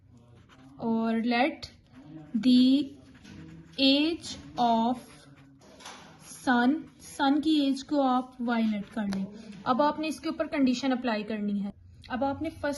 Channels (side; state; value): both; identical; correlation 1.00